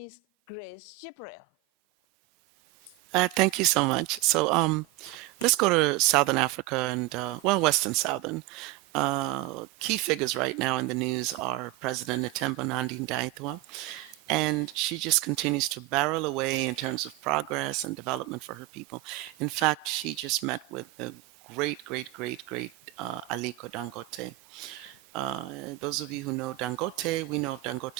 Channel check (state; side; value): quieter; left; 18.2 dB